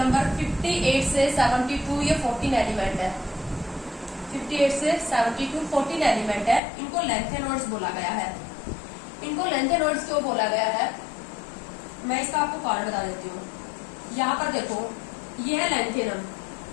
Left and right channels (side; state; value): right; drops out; at 6.6 s